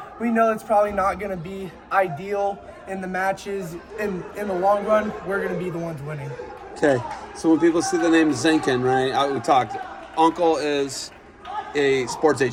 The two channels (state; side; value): identical; both; correlation 1.00